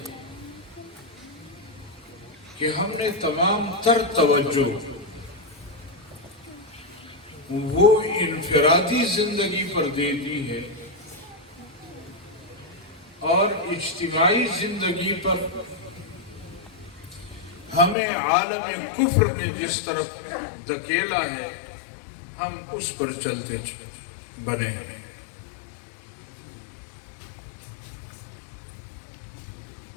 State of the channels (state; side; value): drops out; right; at 17.9 s